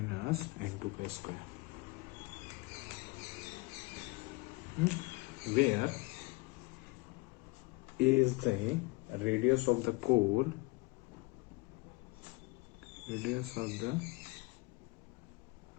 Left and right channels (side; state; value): right; quieter; 24.8 dB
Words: n2 k square, where a is the radius of the core,